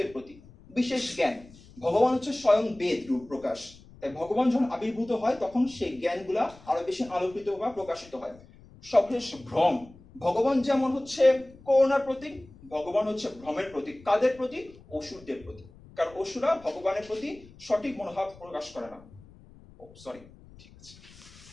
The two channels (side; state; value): left; noise; rumble, 23 dB below the sound